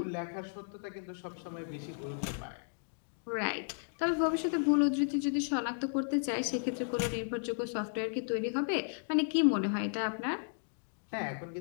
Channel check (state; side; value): silent; right; digital silence